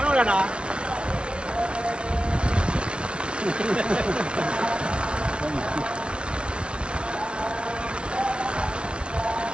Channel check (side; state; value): left; late; 0.055 ms